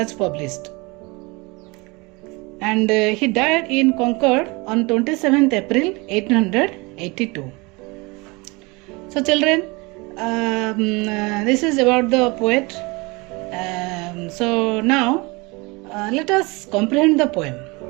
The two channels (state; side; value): quieter; left; 26.0 dB